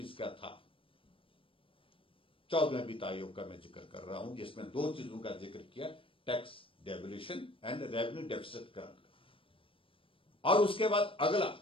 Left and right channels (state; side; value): late; right; 0.26 ms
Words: का था। 14वें वित्त आयोग का मैं जिक्र कर रहा हूं, जिसमें दो चीजों का जिक्र किया, tax devolution and revenue deficit grant का। और उसके बाद अगला